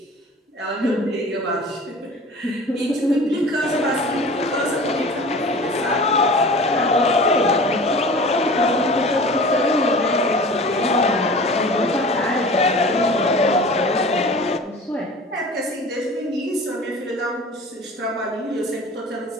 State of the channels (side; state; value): both; normal; correlation 0.40